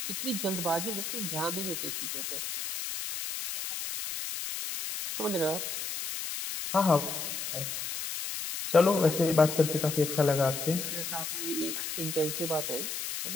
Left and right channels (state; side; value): noise; left; hiss, 5 dB below the sound